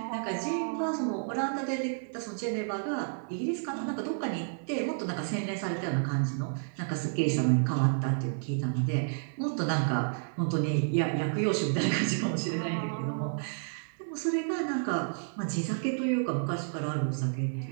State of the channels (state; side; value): silent; left; digital silence